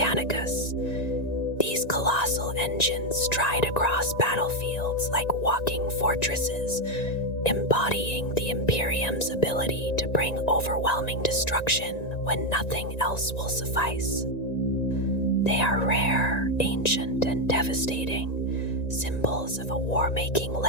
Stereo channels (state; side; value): late; right; 1.9 ms